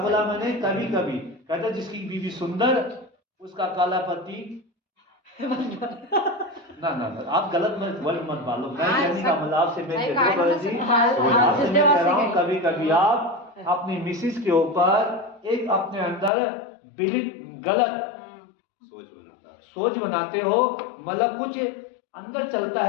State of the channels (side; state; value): right; drops out; at 16.3 s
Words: मैंने? कभी कभी कहता जिसकी बीवी सुंदर उसका काला पति ना, आप गलत वर्ड मत डालो। मैं कहने का मतलब आपसे मैं कह रहा हूँ, कभी कभी आप अपनी मिसिस के ऊपर एक अपने अंदर गलत सोच बनाते हो। मतलब कुछ अंदर चलता